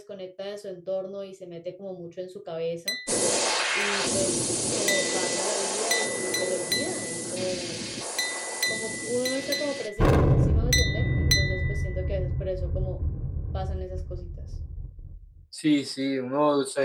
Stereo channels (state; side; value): identical; both; correlation 1.00